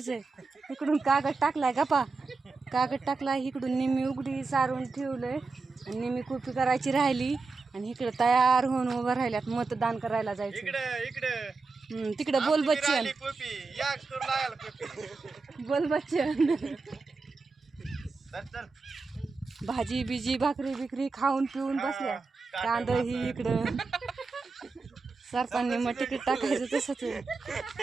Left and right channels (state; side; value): quieter; left; 4.1 dB